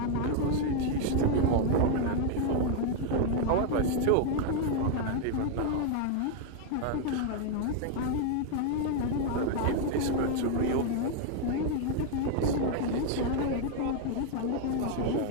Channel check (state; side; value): different; both; correlation 0.00